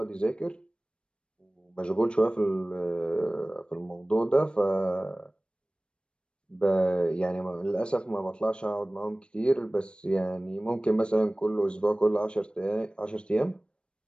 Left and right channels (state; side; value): late; right; 0.055 ms